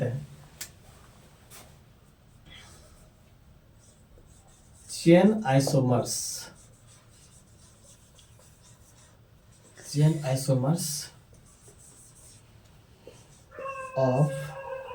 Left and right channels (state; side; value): identical; both; correlation 1.00